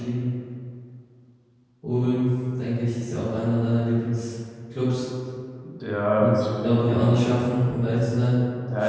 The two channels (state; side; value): identical; both; correlation 1.00